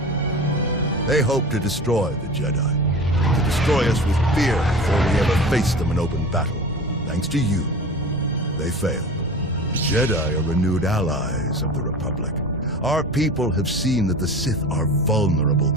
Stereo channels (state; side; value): normal; both; correlation 0.35